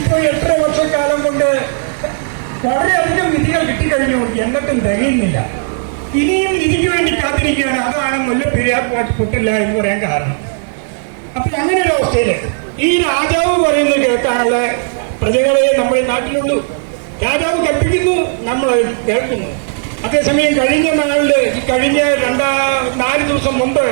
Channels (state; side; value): silent; left; digital silence